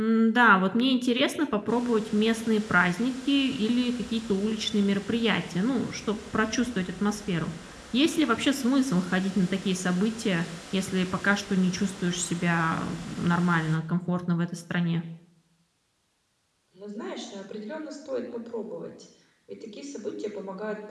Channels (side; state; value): both; identical; correlation 1.00